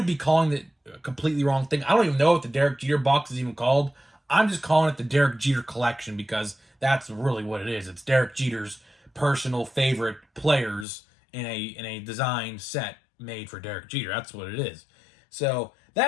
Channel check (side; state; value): right; drops out; at 10.9 s